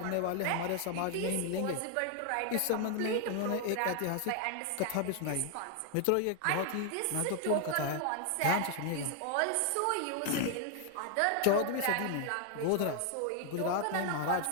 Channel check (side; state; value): both; different; correlation 0.00